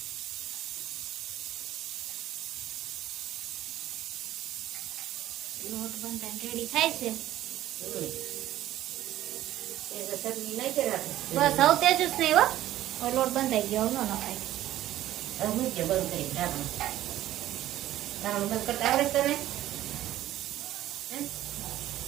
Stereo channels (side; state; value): left; quieter; 13.8 dB